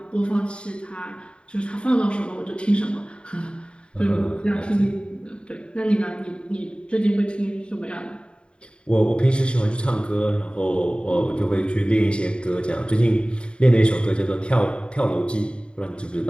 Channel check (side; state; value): right; late; 0.054 ms